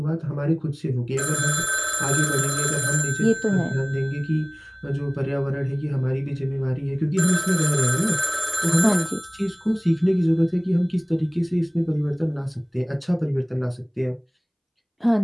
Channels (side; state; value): both; identical; correlation 1.00